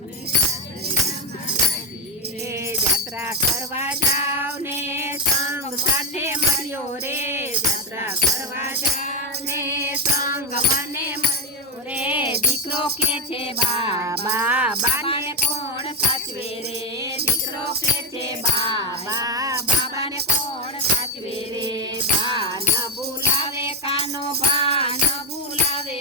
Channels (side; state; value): both; normal; correlation 0.07